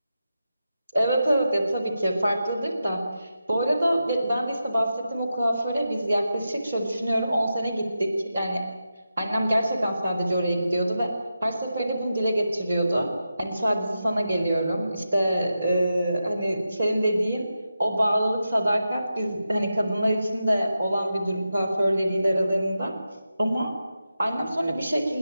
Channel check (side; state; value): both; inverted; correlation -0.90